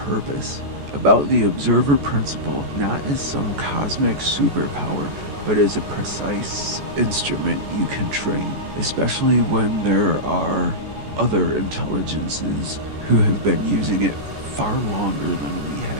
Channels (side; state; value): left; late; 14 ms